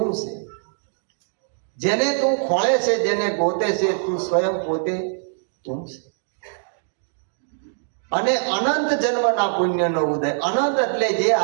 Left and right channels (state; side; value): silent; left; digital silence